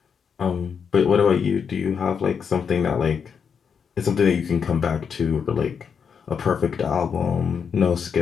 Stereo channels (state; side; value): quieter; right; 6.7 dB